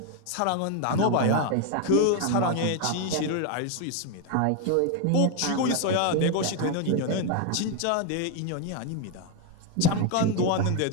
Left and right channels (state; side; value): different; both; correlation 0.01